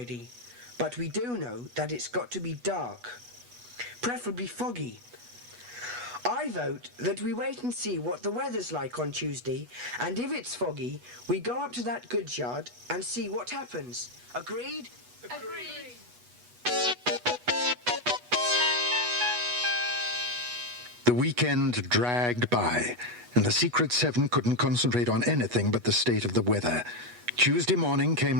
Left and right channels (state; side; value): late; left; 8.2 ms